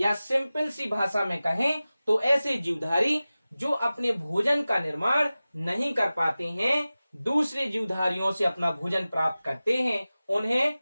सिंपल सी भाषा में कहें तो ऐसे जीवधारी जो अपने भोजन का निर्माण नहीं कर पाते हैं, दूसरे जीवधारियों से अपना भोजन प्राप्त करते हैं, उन्हें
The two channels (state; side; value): inverted; both; correlation -0.96